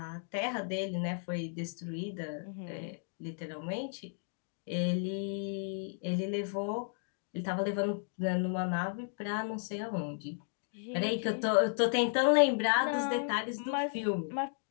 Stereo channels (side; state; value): right; silent; digital silence